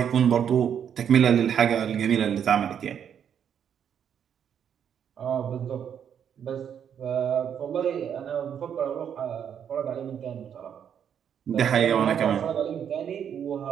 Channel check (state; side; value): quieter; left; 8.5 dB